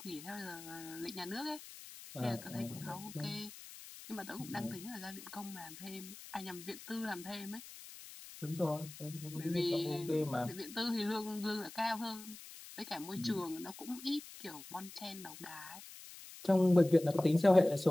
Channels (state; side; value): noise; left; hiss, 15 dB below the sound